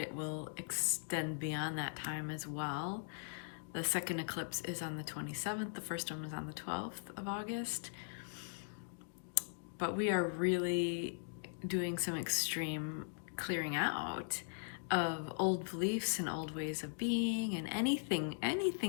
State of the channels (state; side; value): silent; right; digital silence